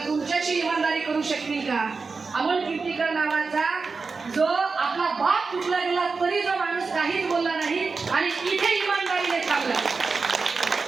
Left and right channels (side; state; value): left; quieter; 4.5 dB